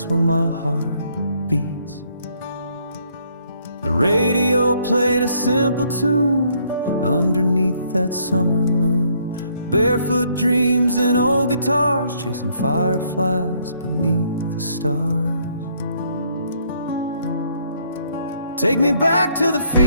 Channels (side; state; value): both; inverted; correlation -0.68